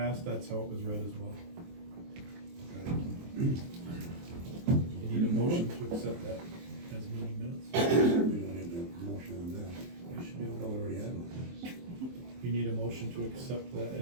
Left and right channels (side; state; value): left; late; 23 ms